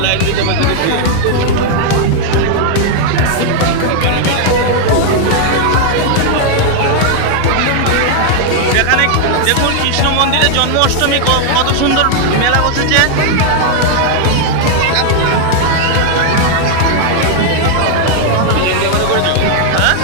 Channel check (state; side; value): different; both; correlation 0.00